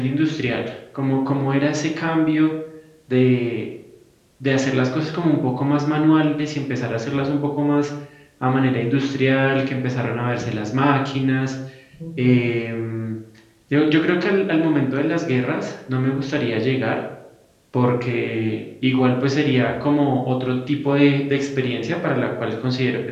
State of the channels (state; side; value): identical; both; correlation 1.00